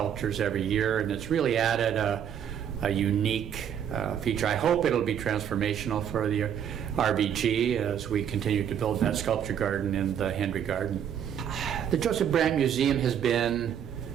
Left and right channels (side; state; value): left; quieter; 8.9 dB